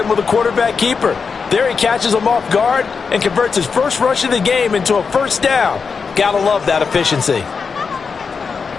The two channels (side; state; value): right; quieter; 5.4 dB